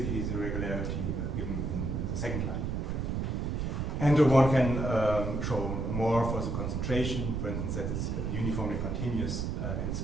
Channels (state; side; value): noise; right; rumble, 1 dB below the sound